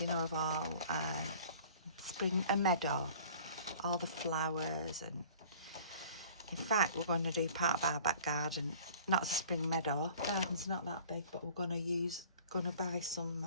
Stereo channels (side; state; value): both; inverted; correlation -0.48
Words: know, of all spring, a meadow, all the flowers. And in fact, we're going to do part of our back garden, not as a spring meadow, garden's not that big, but we're going to buy